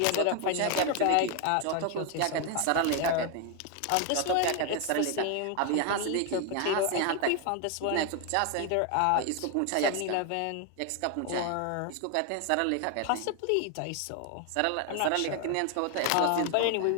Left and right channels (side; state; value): both; different; correlation 0.01